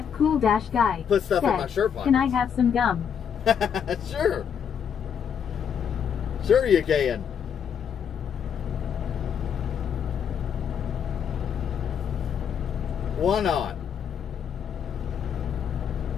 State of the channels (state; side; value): quieter; right; 7.8 dB